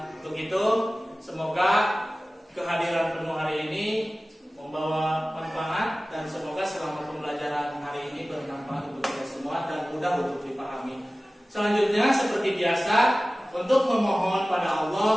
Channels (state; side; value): normal; both; correlation 0.97